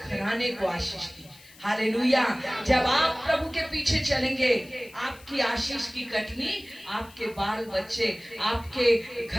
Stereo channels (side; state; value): left; noise; hiss, 23 dB below the sound